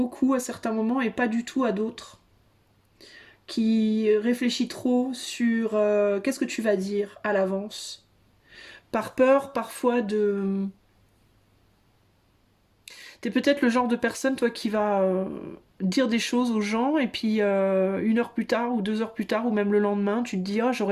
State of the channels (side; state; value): both; identical; correlation 1.00